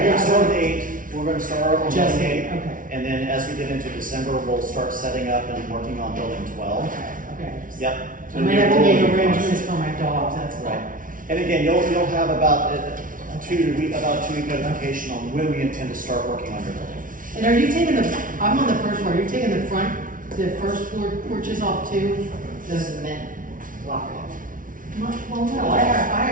going to start with 8. We're going to start on Just building 8. okay. And then as we get into December, we'll start setting up and working on building 12. Okay. Yep. I might have to make arrangements for my dogs, that's all. Right. And again, you'll have about a 2-week notification on when we intend to start working on your building. And are you taking I'm on the first floor, are you taking the first floor porches off too? The cement block. Well, no, I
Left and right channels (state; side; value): late; left; 0.39 ms